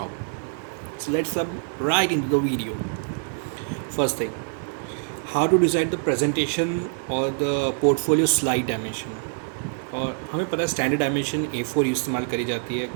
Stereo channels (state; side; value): silent; left; 62 dB below the other